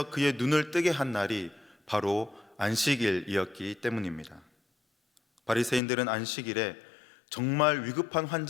그의 눈을 뜨게 한 날이 바로 안식일이었기 때문입니다. 바리새인들은 안식일에 정말 위급한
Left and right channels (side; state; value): right; drops out; at 5.8 s